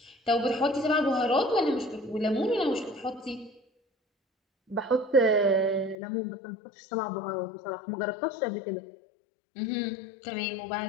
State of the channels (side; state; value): right; drops out; at 6.0 s